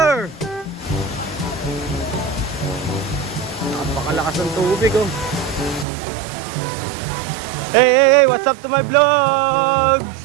napakalakas ng tubig oh. Hey, what's up to my vlogs?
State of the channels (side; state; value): left; drops out; at 5.9 s